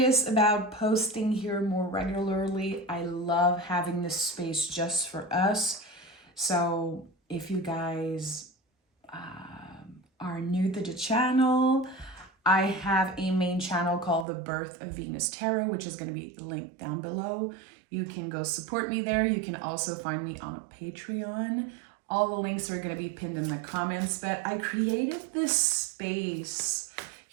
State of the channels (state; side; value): drops out; left; at 14.2 s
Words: about posting here more regularly. I love having this space just for us. So if you guys are new to the channel, I have a main channel called The Birth of Venus Tarot, which is going to be linked down below. You can go support me there. You can also find me on a Patreon. All the links are going to be pinned in the comments, but I created this space